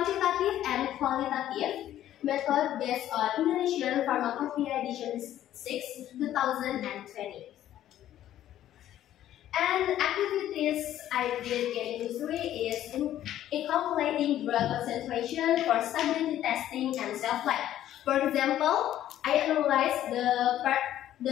and qualitative method based on Indonesian Pharmacopoeia Edition 6, 2020. And activities I did in industry is in calculating drug concentration for stability testing and shelf life. For example, I analyzed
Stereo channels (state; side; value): quieter; right; 12.3 dB